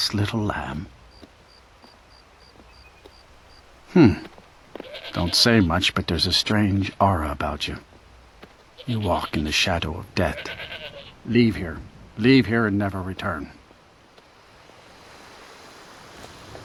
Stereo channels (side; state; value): both; identical; correlation 1.00